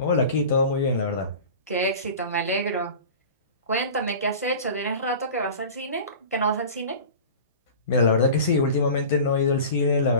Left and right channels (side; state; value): both; inverted; correlation -0.36